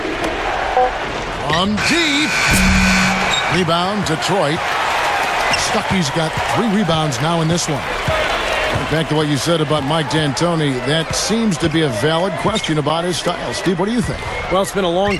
From deep. Rebound, Detroit. Stuckey's got 3 rebounds now in this one. Back to what you said about Mike D'Antoni, that seems to be a valid question about his style. Steve, what do you think? Well, it's been a long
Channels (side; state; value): both; identical; correlation 1.00